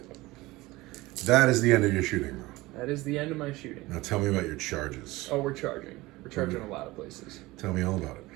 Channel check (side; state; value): left; quieter; 20.1 dB